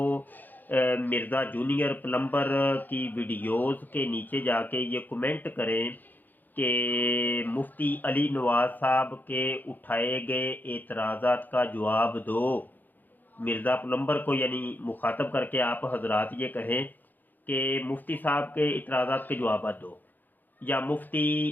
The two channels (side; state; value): right; late; 0.086 ms